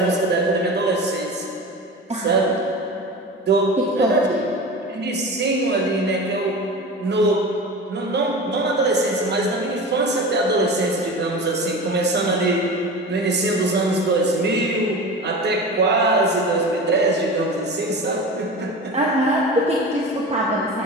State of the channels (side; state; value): both; normal; correlation 0.32